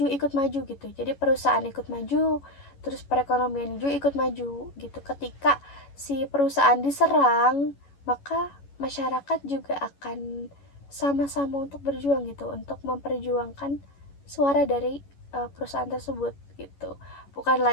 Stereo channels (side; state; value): right; late; 11 ms